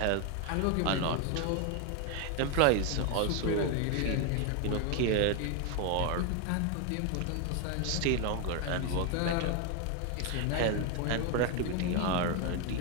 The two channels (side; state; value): both; different; correlation 0.01